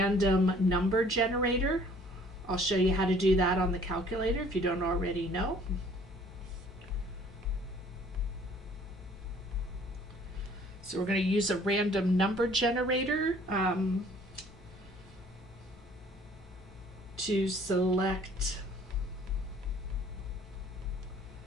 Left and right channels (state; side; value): normal; both; correlation 0.56